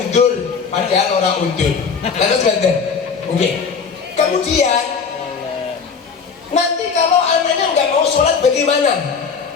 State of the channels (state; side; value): quieter; right; 5.7 dB